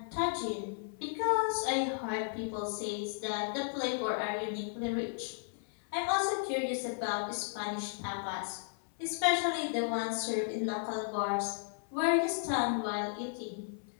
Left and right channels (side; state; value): right; silent; 55 dB below the other